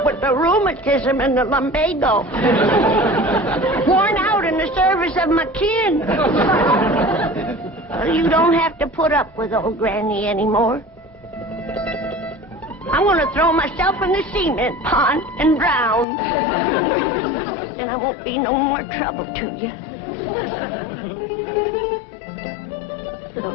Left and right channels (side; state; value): right; drops out; at 16.1 s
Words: with the rheumatism and the lumbago. Worn out in the service of my kin. Well, you don't have to put up with old Granny anymore. I want to throw myself in the cement pond and drown. Then I won't be no more trouble to you.